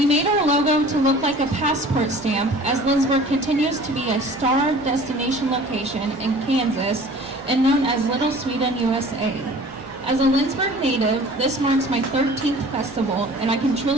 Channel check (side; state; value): both; normal; correlation 0.46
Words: made our logo to look like a passport stamp, as Lindsborg continues to be a star destination location in Kansas and known as Little Sweden, USA. As a Lindsborg native, this marks my 13th festival, and I can